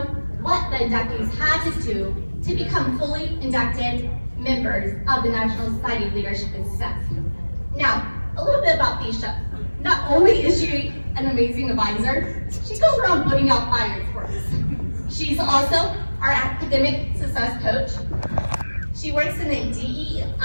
what the inductees had to do to become fully inducted members of the National Society of Leadership and Success. Now, a little bit about Bisha. Not only is she an amazing advisor, she goes around putting out fires for us. She's also our academic success coach. She works in the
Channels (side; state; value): both; inverted; correlation -1.00